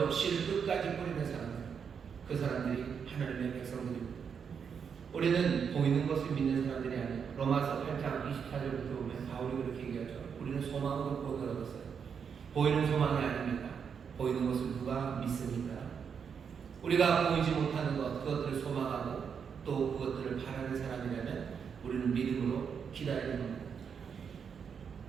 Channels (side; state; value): left; quieter; 6.8 dB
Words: 씨를 끝까지 뿌리는 사람들, 그 사람들이 하나님의 백성들입니다. 우리는 보이는 것을 믿는 사람들이 아니에요. 로마서 8장 24절부터 보면 바울이 그렇게 얘기하죠. 우리는 소망으로 구원을 얻었어요. 보이는 소망이 아닙니다. 보이는 것을 누가 믿습니까? 우리가 보이지 못하는 것, 그것들을 소망하고 또 그것들을 바라는 사람이라면 우리는 믿음으로 기다리는 겁니다.